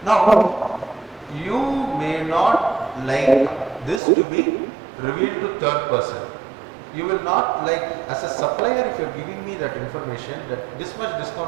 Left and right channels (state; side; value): drops out; left; at 4.0 s